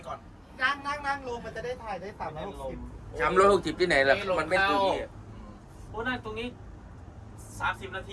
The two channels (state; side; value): identical; both; correlation 1.00